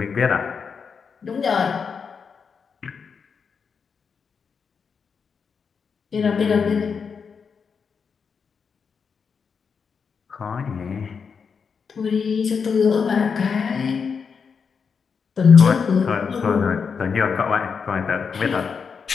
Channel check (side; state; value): right; quieter; 5.9 dB